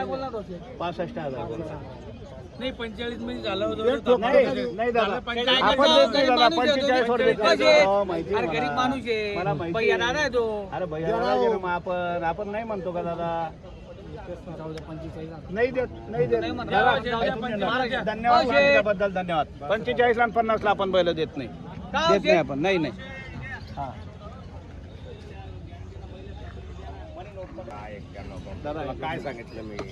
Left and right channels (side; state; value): both; identical; correlation 1.00